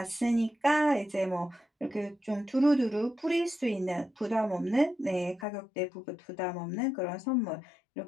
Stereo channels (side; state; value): right; drops out; at 5.5 s